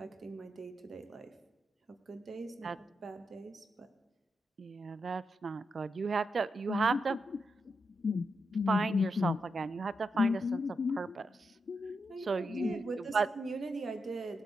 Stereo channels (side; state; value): both; normal; correlation 0.85